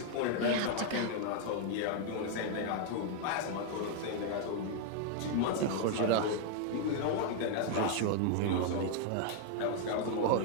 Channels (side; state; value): both; different; correlation 0.00